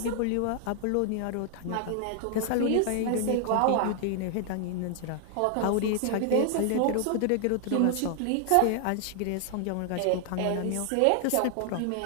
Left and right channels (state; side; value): different; both; correlation 0.00